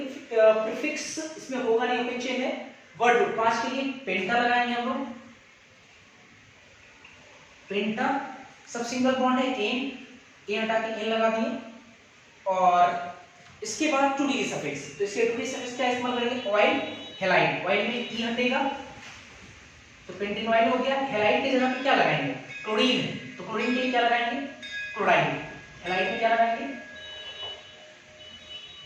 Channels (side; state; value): both; identical; correlation 1.00